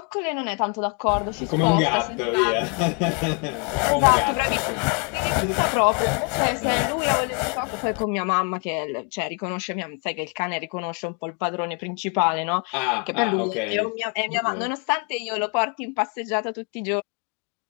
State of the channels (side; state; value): right; quieter; 35.8 dB